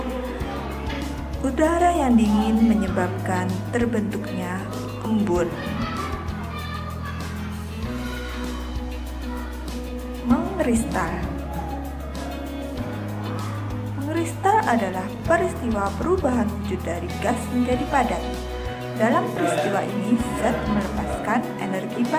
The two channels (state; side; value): identical; both; correlation 1.00